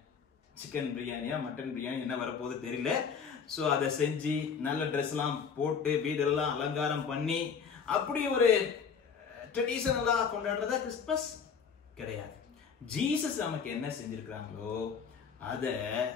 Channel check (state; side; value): quieter; right; 6.4 dB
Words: சிக்கன் பிரியாணியா மட்டன் பிரியாணி என்ன வரப்போகுது தெரியல. சோ அதை செஞ்சு நல்ல ட்ரெஸ் எல்லாம் போட்டு வீடெல்லாம் அலங்காரம் பண்ணி அப்படி ஒரு ட்ரெடிஷனலா கொண்டாடுறதா கிறிஸ்துமஸ் கிடையாது. ஜீசஸ் நமக்கு என்ன செஞ்சிருக்கிறாங்களோ அத